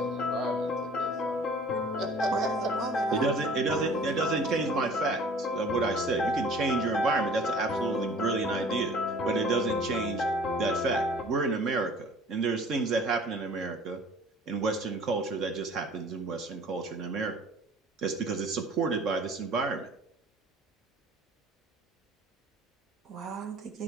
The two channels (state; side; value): normal; both; correlation 0.49